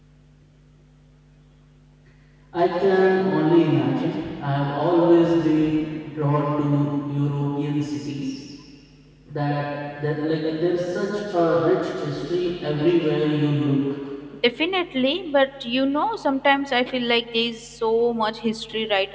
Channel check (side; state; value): both; identical; correlation 1.00